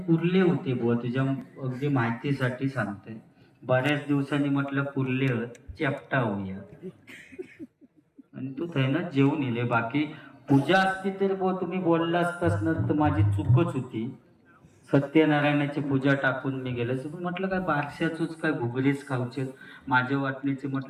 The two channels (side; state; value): both; identical; correlation 1.00